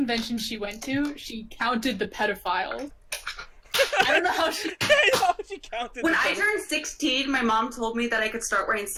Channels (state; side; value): identical; both; correlation 1.00